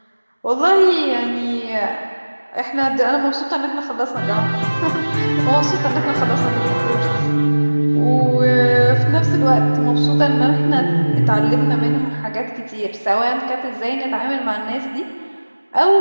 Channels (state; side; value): inverted; both; correlation -1.00